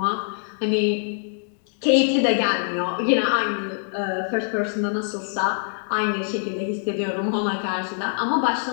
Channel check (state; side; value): silent; right; 63 dB below the other